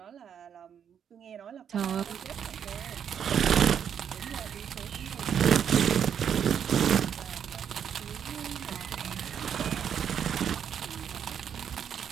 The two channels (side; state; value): left; quieter; 8.3 dB